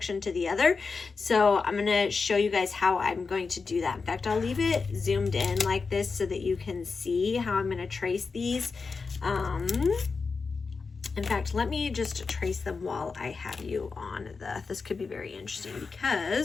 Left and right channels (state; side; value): quieter; right; 4.7 dB